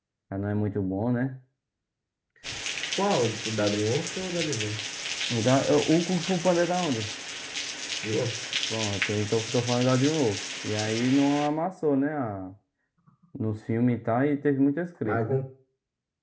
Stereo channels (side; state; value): both; identical; correlation 1.00